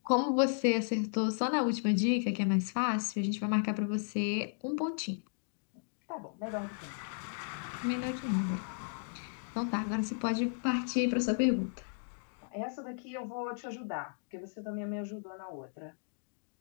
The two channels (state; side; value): silent; right; digital silence